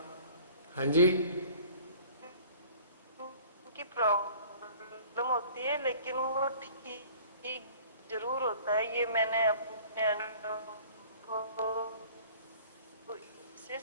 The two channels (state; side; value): inverted; both; correlation -0.49